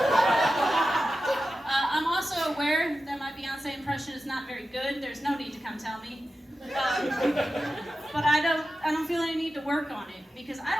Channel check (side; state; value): both; normal; correlation 0.92